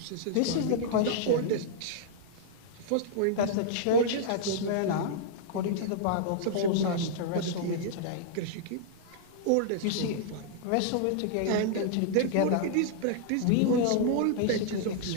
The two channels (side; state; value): both; different; correlation -0.01